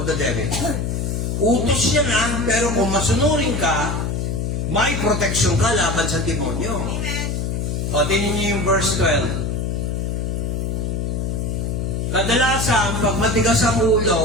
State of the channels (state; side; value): noise; left; hum, 1 dB below the sound